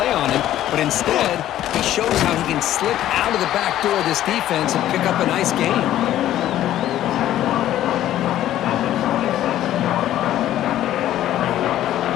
on him, but instead, he shows how he can slip out of the back door of this defense and pick up a nice gain.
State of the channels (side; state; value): right; quieter; 12.8 dB